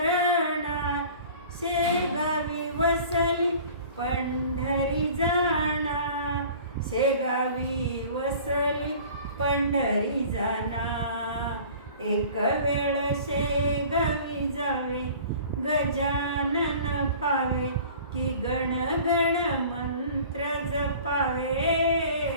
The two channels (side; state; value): both; inverted; correlation -0.45